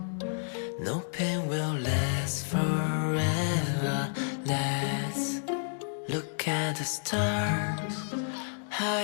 No pain will last forever. Let's look at the stars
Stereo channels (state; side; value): silent; right; digital silence